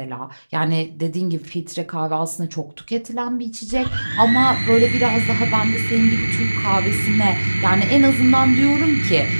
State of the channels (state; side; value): inverted; both; correlation -1.00